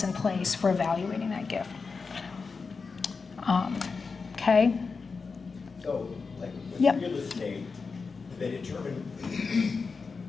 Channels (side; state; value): right; quieter; 4.7 dB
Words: in place for evaluating that gift. Okay. So, like with Yep. real estate, they determine